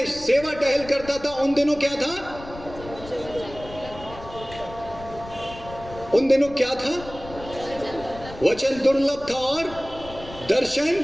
सेवा टहल करता था। उन दिनों क्या था? उन दिनों क्या था? वचन दुर्लभ था और दर्शन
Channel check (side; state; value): left; noise; rumble, 15 dB below the sound